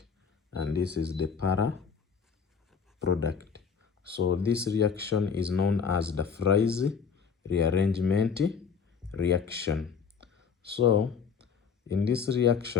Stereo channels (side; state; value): right; quieter; 6.3 dB